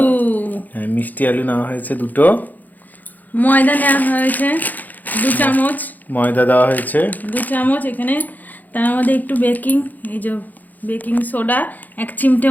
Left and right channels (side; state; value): right; late; 0.083 ms